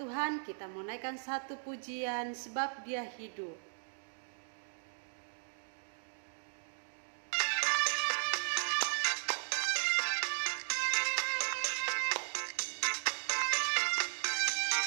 Kita mau naikkan satu pujian sebab Dia hidup.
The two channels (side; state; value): left; silent; digital silence